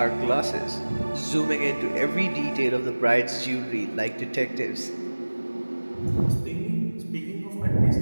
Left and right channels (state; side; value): inverted; both; correlation -1.00